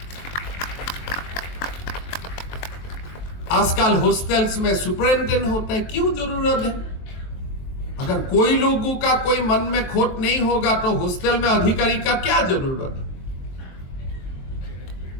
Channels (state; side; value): late; right; 23 ms